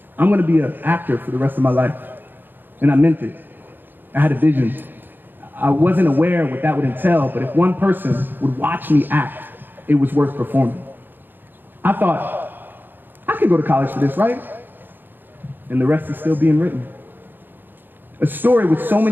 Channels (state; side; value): late; left; 0.093 ms